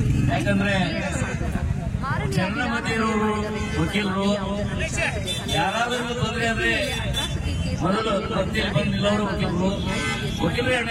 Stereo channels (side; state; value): both; identical; correlation 1.00